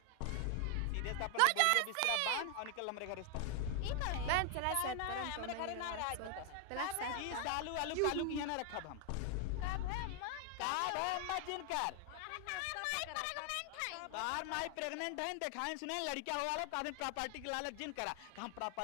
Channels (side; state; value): both; different; correlation 0.00